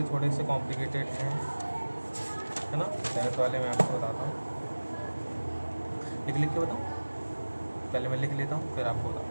थोड़े से कॉम्प्लिकेटेड हैं, है ना। 7th वाले मैं आपको बताता हूँ, लिख के बताऊँ, पहले मैं लिख लेता हूँ फिर आपको बताता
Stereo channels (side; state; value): both; inverted; correlation -1.00